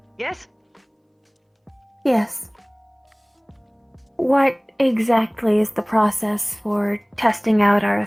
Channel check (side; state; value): both; identical; correlation 1.00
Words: yes? Yes. What exactly is the process for testing out our